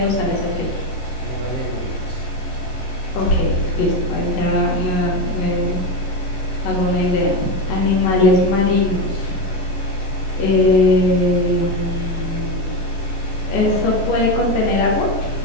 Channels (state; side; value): late; right; 11 ms